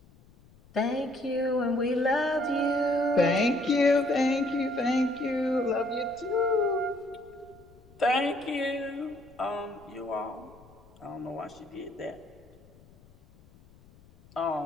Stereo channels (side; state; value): left; noise; rumble, 26 dB below the sound